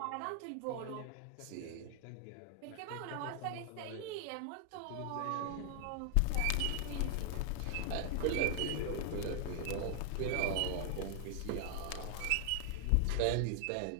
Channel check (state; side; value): different; both; correlation 0.00